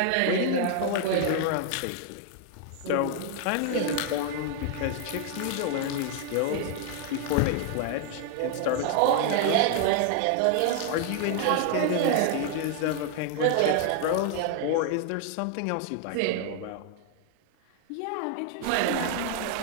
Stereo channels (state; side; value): different; both; correlation 0.00